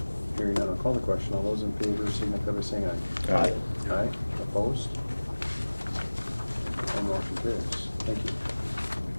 Hearing none, I'll call the question. All those in favor signify by saying aye. Aye. Aye. Opposed? And motion carries. Thank you.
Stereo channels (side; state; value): both; inverted; correlation -1.00